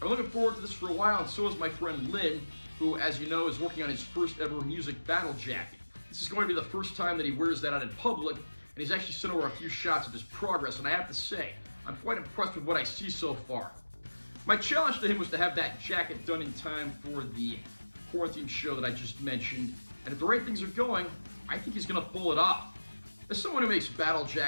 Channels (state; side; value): inverted; both; correlation -1.00